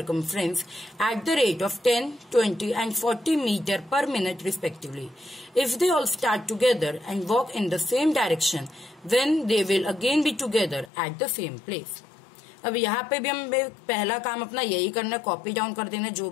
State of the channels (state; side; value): drops out; right; at 10.9 s